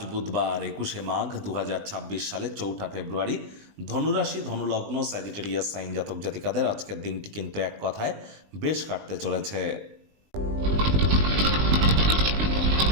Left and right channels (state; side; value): late; left; 20 ms